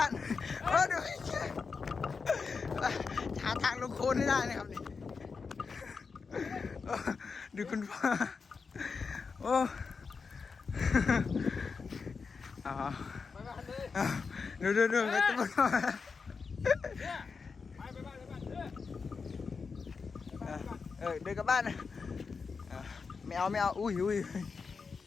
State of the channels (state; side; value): quieter; right; 5.0 dB